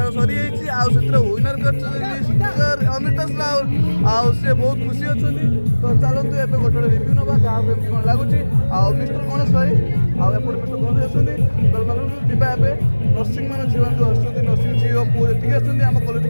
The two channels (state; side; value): inverted; both; correlation -1.00